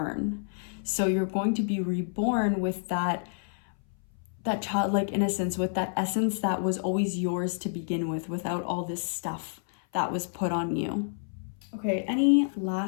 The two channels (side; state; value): right; silent; 58 dB below the other